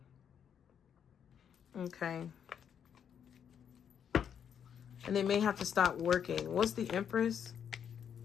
Okay. And they may have to stop working. What's the Empress?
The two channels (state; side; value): quieter; right; 8.2 dB